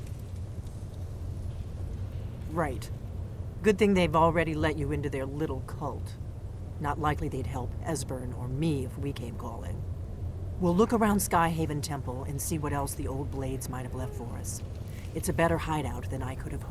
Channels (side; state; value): both; identical; correlation 1.00